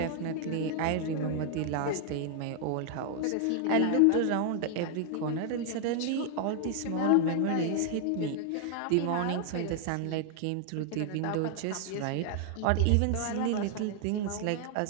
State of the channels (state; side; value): different; both; correlation 0.00